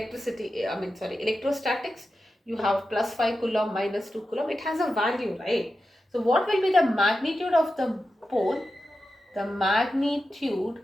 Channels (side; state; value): both; normal; correlation 0.91